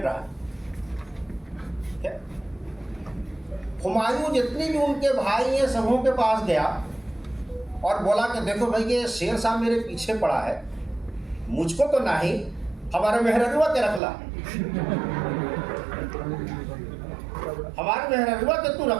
रहा। हुमायूं जितने भी उनके भाई हैं सबों के पास गया और बोला कि देखो भाई ये शेर शाह मेरे पीछे पड़ा है, मुझको तो नहीं, हमारे मेहररुआ के रखला, हमारे मेहररुआ के तू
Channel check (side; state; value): left; drops out; at 14.0 s